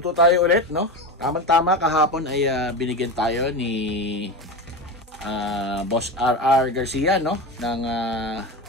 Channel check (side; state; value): both; normal; correlation 0.22